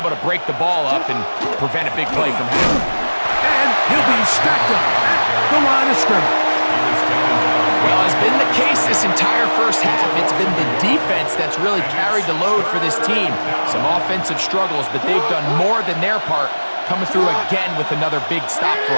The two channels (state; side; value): inverted; both; correlation -1.00